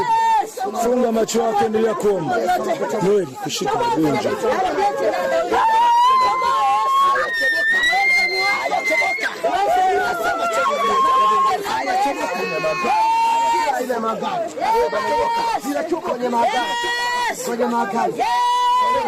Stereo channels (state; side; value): identical; both; correlation 1.00